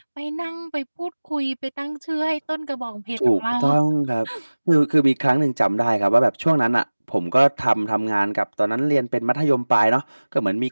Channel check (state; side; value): inverted; both; correlation -1.00